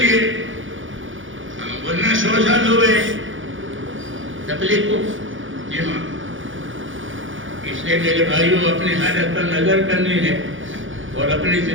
ہے. ورنہ 100 سال ہوئے تبلیغ کو. جی ہاں، اس لیے میرے بھائیوں اپنی حالت پر نظر کرنی ہے اور اپنی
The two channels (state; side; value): late; left; 0.57 ms